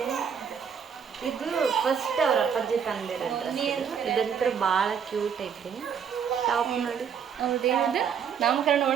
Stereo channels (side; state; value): left; quieter; 7.3 dB